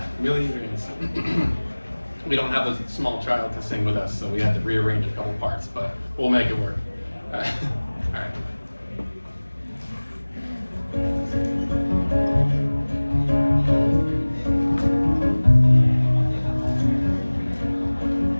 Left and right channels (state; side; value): inverted; both; correlation -1.00